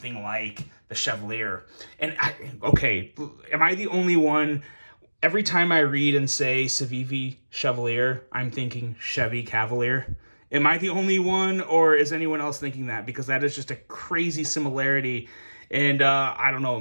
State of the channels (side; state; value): both; inverted; correlation -1.00